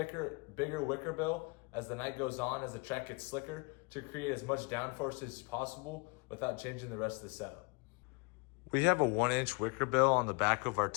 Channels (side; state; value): right; quieter; 30.7 dB